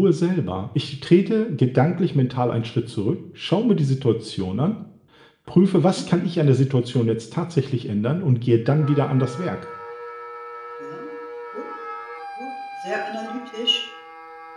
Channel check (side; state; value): both; identical; correlation 1.00